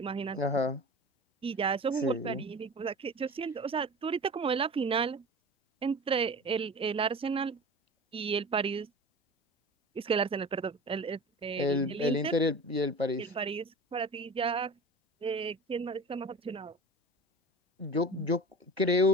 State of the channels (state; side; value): normal; both; correlation 0.35